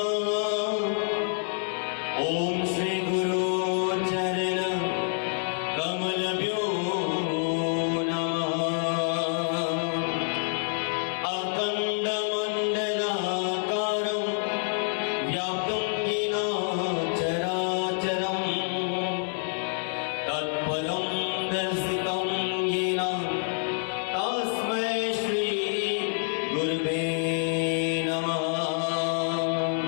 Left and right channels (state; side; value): silent; right; 60 dB below the other